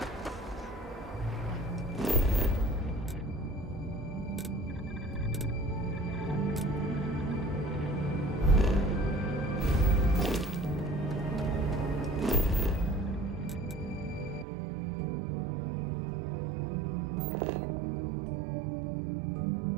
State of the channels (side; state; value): left; drops out; at 14.5 s